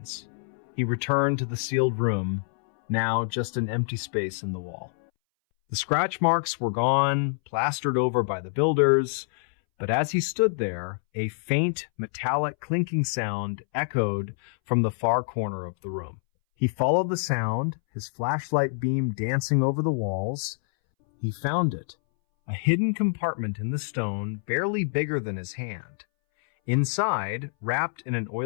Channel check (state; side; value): silent; right; 61 dB below the other